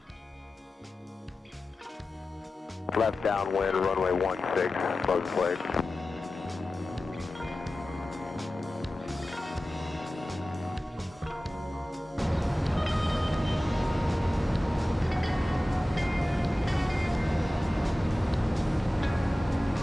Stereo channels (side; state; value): both; normal; correlation 0.95